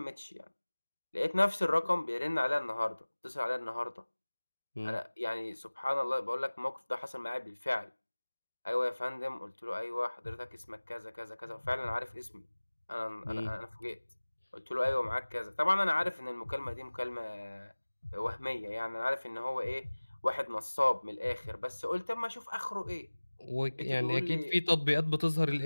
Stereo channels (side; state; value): both; inverted; correlation -1.00